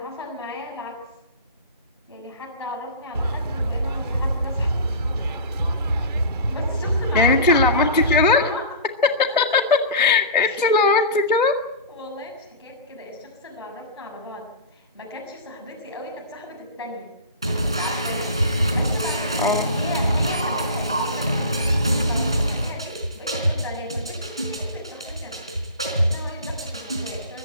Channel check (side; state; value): both; inverted; correlation -0.31